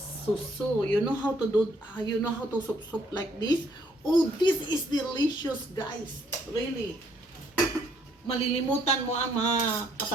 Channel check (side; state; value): both; normal; correlation 0.67